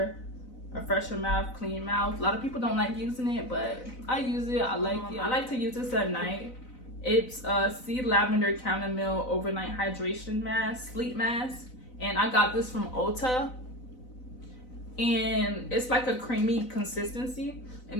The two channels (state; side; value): late; right; 4.0 ms